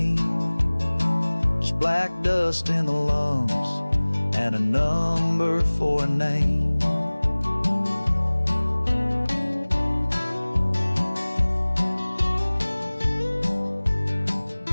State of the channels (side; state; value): both; inverted; correlation -1.00